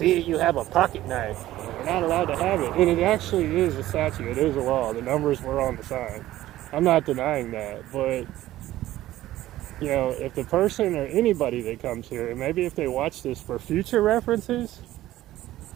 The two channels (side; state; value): left; quieter; 14.9 dB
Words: you have a pocket knife. You're not allowed to have it. And it actually is a statute. It is a law. The numbers were on the sign. I'm not denying that. But, you know, if the person or anybody that comes here, and maybe if they watch this for future references,